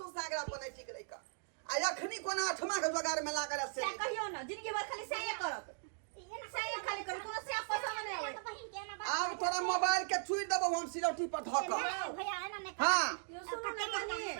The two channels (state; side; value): silent; left; digital silence